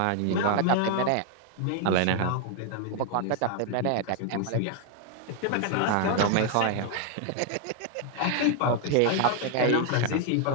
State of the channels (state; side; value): different; both; correlation 0.00